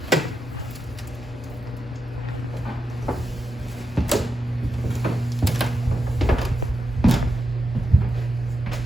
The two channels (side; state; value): both; normal; correlation 0.86